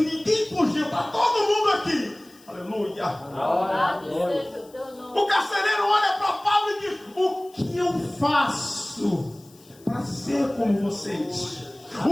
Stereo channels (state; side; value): noise; left; hiss, 26 dB below the sound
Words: fugiu, está todo mundo aqui, aleluia. O carcereiro olha para Paulo e diz: o que eu faço para ser como vocês?